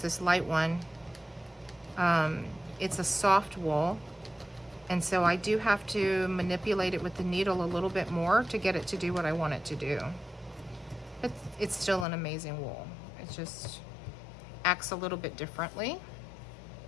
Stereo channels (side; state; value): right; drops out; at 12.1 s